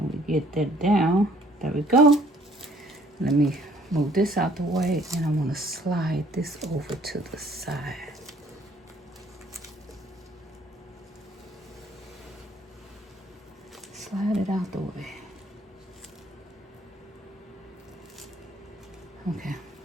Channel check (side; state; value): both; normal; correlation 0.60